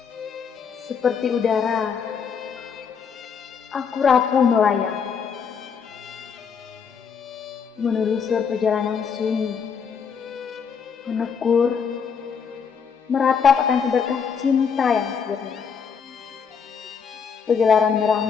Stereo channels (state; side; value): quieter; right; 6.5 dB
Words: Seperti udara, aku rapuh melayang, menelusur perjalanan sunyi, menekur, meratap akan seberkas cinta yang sirna. Pegelaran merah